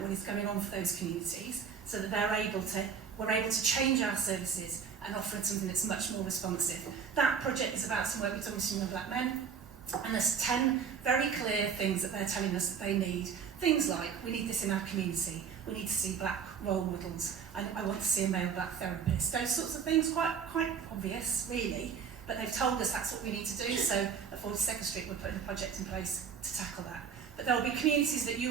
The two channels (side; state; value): left; quieter; 6.8 dB